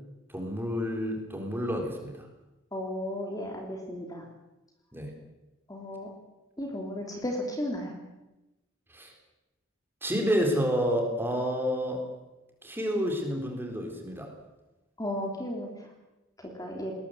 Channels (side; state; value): both; normal; correlation 0.63